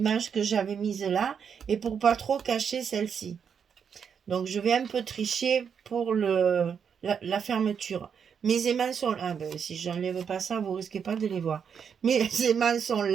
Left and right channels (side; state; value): left; quieter; 7.1 dB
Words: que j'avais mise là et pour pas trop cacher celle-ci. Donc, je vais un peu tricher pour la fermeture. Mes aimants sont là. Ah ben, si je n'enlève pas ça, vous risquez pas de les voir. Mes aimants sont